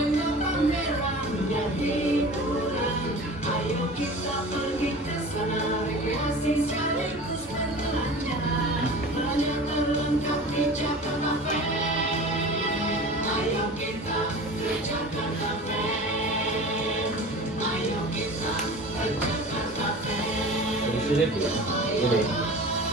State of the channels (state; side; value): normal; both; correlation 0.37